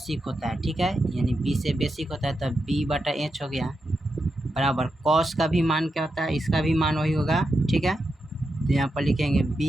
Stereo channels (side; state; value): both; normal; correlation 0.87